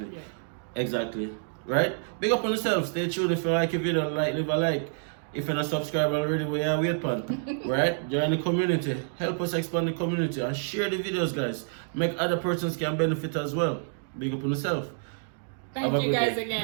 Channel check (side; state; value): left; silent; digital silence